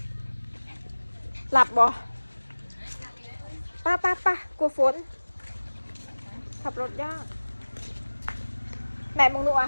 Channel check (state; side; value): inverted; both; correlation -1.00